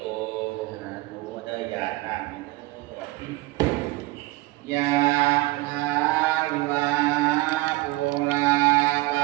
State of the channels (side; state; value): left; quieter; 20.1 dB